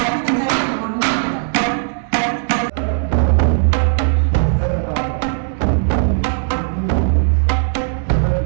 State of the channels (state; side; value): silent; left; digital silence